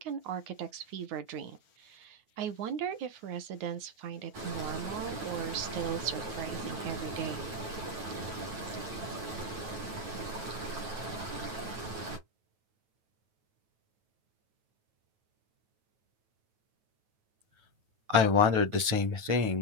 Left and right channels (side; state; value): left; late; 9.3 ms